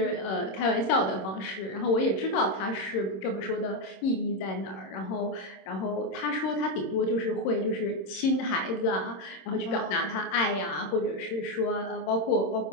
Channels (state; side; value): late; right; 26 ms